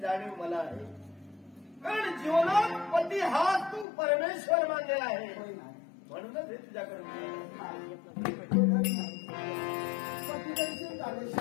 जाणीव मला आहे. कारण जीवनात पती हा तू परमेश्वर मानलेला आहे, म्हणूनच हे तुझ्याकडे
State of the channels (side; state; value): right; drops out; at 3.9 s